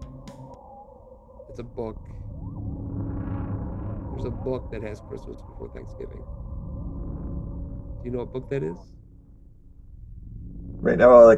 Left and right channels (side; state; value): both; identical; correlation 1.00